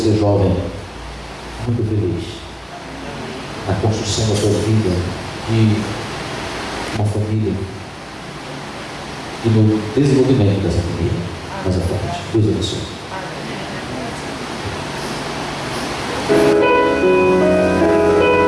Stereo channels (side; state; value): both; identical; correlation 1.00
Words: jovem, muito feliz na construção da sua vida, de uma família e no desenvolvimento dessa família mais à frente. Deus abençoe.